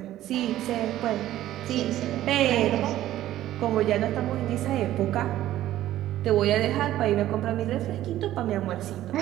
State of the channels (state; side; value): quieter; left; 13.7 dB